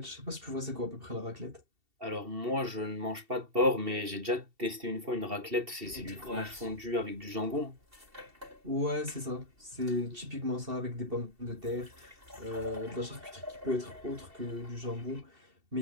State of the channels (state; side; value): late; left; 2.7 ms